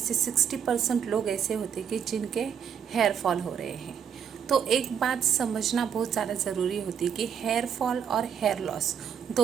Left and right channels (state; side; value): quieter; left; 8.0 dB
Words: 60% लोग ऐसे होते हैं कि जिनके हेयर फॉल हो रहे हैं। तो एक बात समझना बहुत ज़्यादा ज़रूरी होती है कि हेयर फॉल और हेयर लॉस